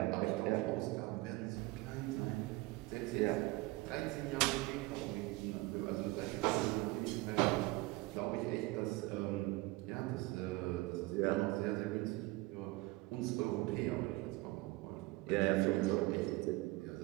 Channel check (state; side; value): quieter; left; 21.3 dB